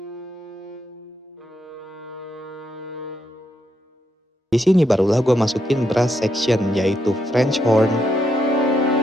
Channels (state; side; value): normal; both; correlation 0.79